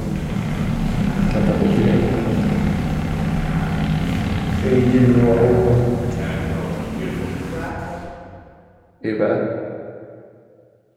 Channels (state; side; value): identical; both; correlation 1.00